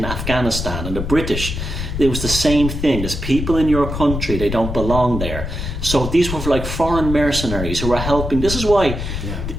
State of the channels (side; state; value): left; noise; rumble, 5 dB below the sound